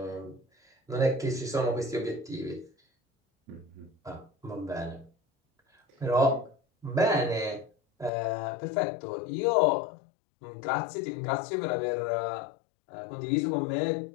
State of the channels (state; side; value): drops out; right; at 8.1 s